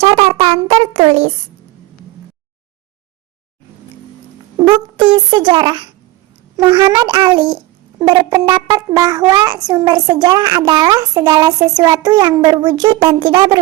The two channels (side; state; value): left; quieter; 18.7 dB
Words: tertulis. Bukti sejarah. Muhammad Ali berpendapat bahwa sumber sejarah adalah segala sesuatu yang berwujud dan tidak